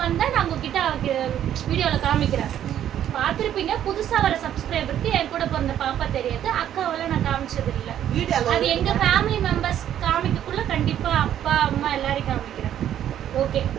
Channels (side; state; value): left; quieter; 10.7 dB